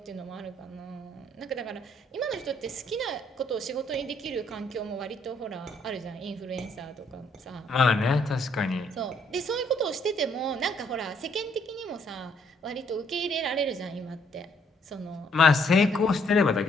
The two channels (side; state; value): both; normal; correlation 0.67